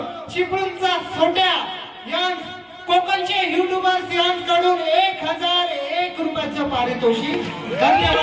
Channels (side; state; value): both; identical; correlation 1.00